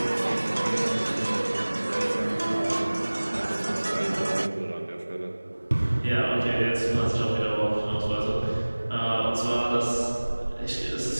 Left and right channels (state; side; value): inverted; both; correlation -1.00